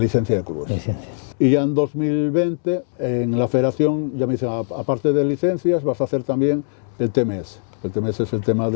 de clubes. Y ya en 2020, en la federación, ya me dicen, aparte de licencias, vas a hacer también el TMS. El TMS es el tema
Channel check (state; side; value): silent; right; 65 dB below the other